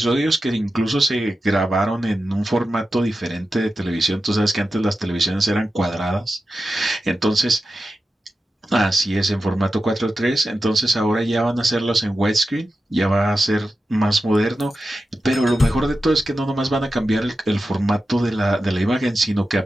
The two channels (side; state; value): both; normal; correlation 0.91